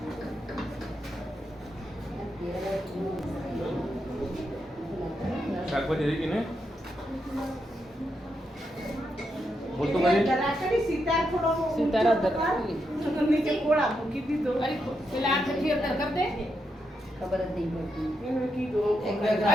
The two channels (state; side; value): normal; both; correlation 0.83